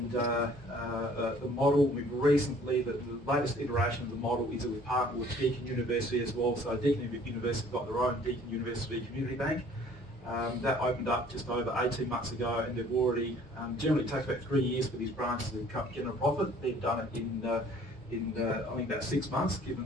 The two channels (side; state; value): both; normal; correlation 0.55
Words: the model. We've recently, the latest iteration of the model is that we've partnered with Deakin University as well. So Deakin University have got their own Deakin University Community Bank. That opened up just over 18 months ago, and they've already, generally it takes about 3 years for these branches to get a profit. They've done it in I think about 6 months, given